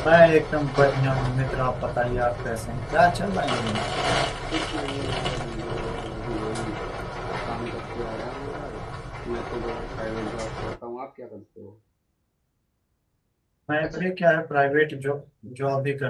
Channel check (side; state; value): both; identical; correlation 1.00